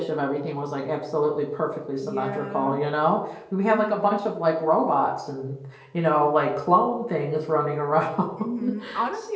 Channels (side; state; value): both; identical; correlation 1.00